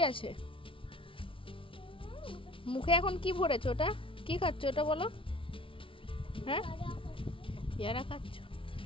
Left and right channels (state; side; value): late; right; 0.25 ms